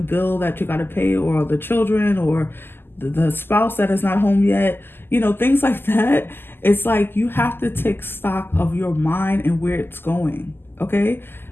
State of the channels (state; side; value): late; right; 0.10 ms